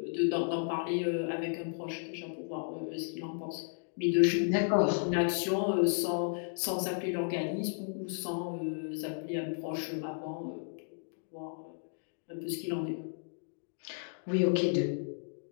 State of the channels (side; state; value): right; silent; digital silence